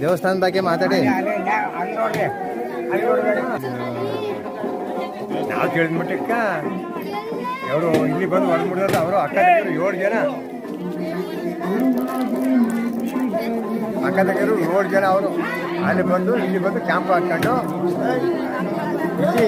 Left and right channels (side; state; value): both; identical; correlation 1.00